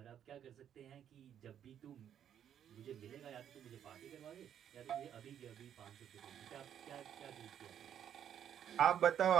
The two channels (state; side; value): quieter; left; 9.5 dB